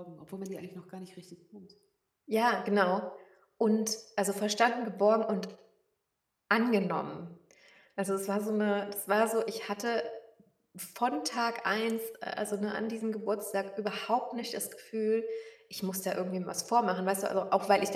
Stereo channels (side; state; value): both; identical; correlation 1.00